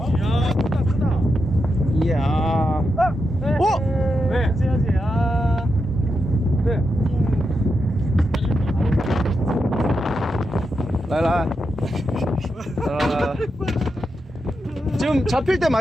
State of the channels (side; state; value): both; normal; correlation 0.86